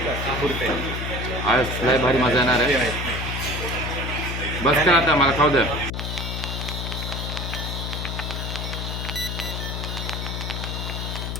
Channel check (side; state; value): left; noise; hum, 4 dB below the sound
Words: आज लय भारी मजा येणार आहे. बस कर आता, मला खाऊ द्या.